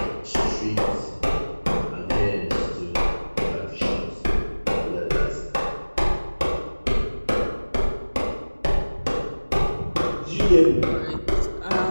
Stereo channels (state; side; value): inverted; both; correlation -1.00